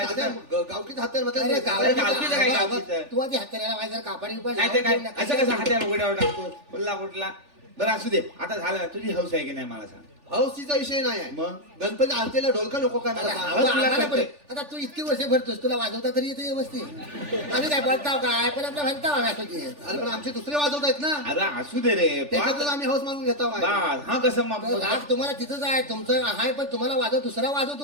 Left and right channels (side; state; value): left; late; 3.4 ms